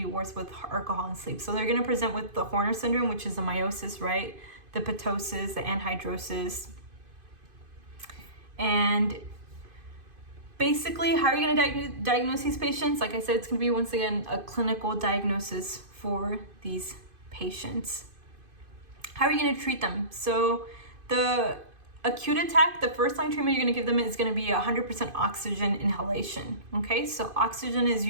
worse with alcohol and sleep. So they're going to present with the Horner syndrome, which is the meiosis, right? The ptosis, the anhidrosis. And basically, how are you going to diagnose these patients? Like I said, it's going to be, once again, a clinical diagnosis for these patients. How are you going to treat them? So the acute attack, the first line treatment you're going to give them is going to be 100% oxygen inhalation. Okay, so oxygen is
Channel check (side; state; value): left; late; 2.5 ms